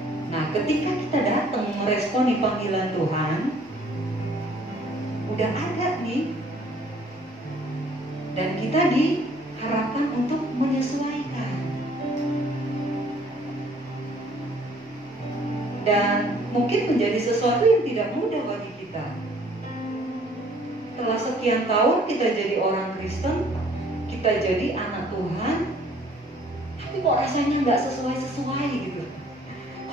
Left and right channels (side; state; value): both; normal; correlation 0.58